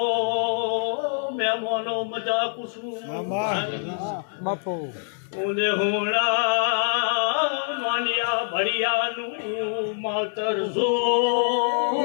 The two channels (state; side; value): silent; right; digital silence